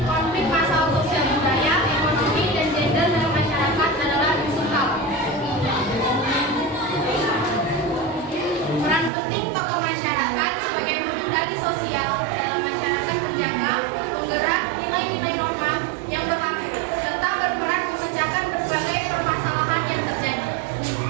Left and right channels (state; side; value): drops out; left; at 9.1 s